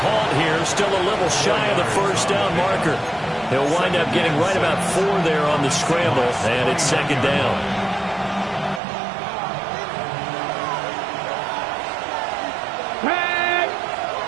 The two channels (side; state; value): left; drops out; at 8.8 s